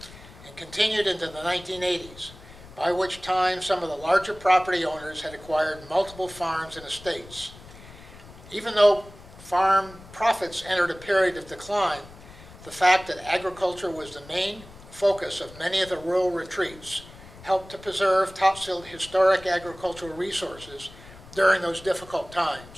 and continued into the 1980s, by which time some of the larger property owners had acquired multiple farms and estates. Even though farm profits entered a period of decline, the fact that agriculture was the main focus of many of the rural retreats helped to preserve Topsfield historic agricultural resources during those difficult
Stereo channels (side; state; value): left; noise; rumble, 19 dB below the sound